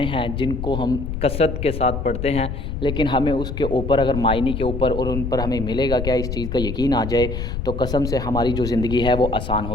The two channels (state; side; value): noise; left; rumble, 4 dB below the sound